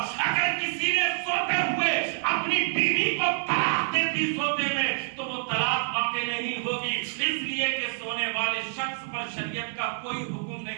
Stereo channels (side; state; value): left; silent; 58 dB below the other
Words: والے شخص پر شریعت کا کوئی حکم